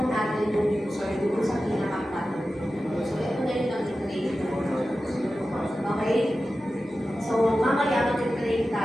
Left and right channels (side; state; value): both; normal; correlation 0.94